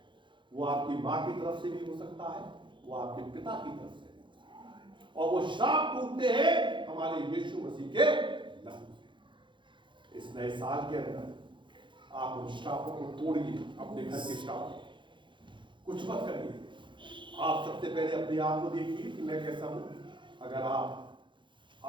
वो आपकी मां की तरफ से भी हो सकता है, वो आपके पिता की तरफ से भी हो सकता है, और वो श्राप टूटते हैं हमारे यीशु मसीह के नाम से। इस नए साल के अंदर आप उन श्रापों को तोड़िए, अपने घर के श्राप कुछ मत करिए। आप सबसे पहले अपने आप को देखिए कि मैं कैसा हूं। अगर आप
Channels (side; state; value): left; late; 0.23 ms